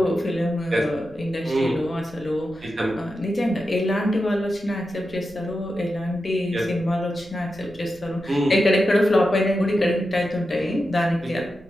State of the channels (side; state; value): right; noise; rumble, 24 dB below the sound